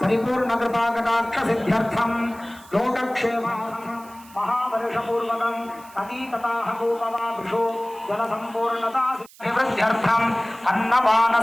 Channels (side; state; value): right; noise; hiss, 23 dB below the sound